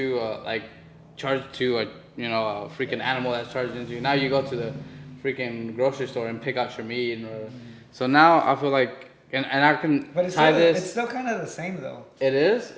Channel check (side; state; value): both; identical; correlation 1.00